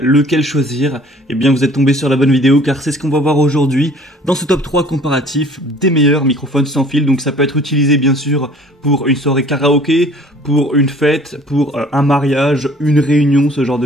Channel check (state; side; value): normal; both; correlation 0.52